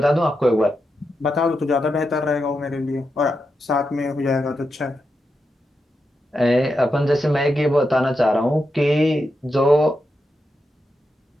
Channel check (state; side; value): normal; both; correlation 0.86